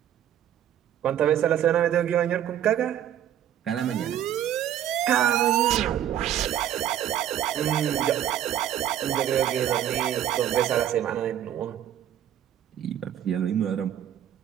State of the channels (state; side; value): quieter; left; 10.9 dB